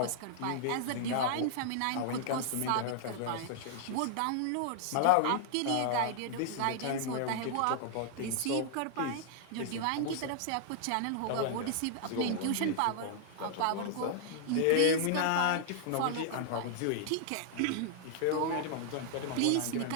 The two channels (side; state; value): both; different; correlation -0.01